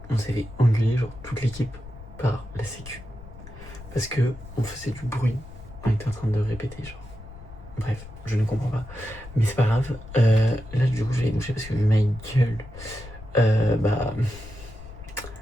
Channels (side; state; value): left; noise; rumble, 16 dB below the sound